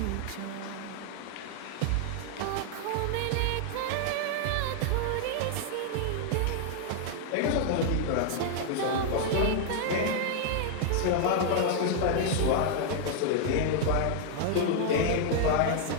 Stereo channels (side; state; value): both; different; correlation 0.00